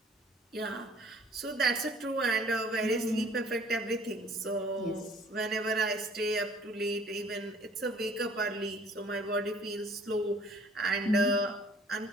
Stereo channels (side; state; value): both; normal; correlation 0.55